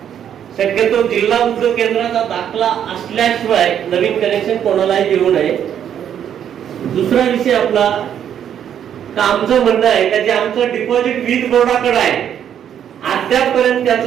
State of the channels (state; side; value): quieter; left; 9.4 dB